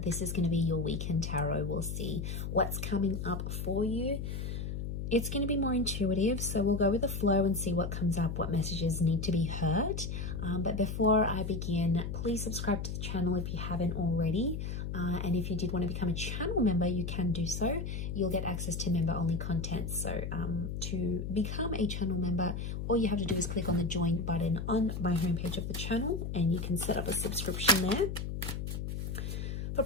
This is going to be your weekend tarot. We'll see what's coming up for you. It's going to be more intuitive, so we'll go with the flow and see what comes up, what messages need to be heard. But before I begin, please subscribe to the channel if you haven't already. And if you did want to become a channel member, you can do so. You'll get access to member-only content. So to become a channel member, all you have to do is click on the join button on my homepage of the channel, and you can set up a subscription there. For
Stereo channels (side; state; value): left; noise; hum, 4 dB below the sound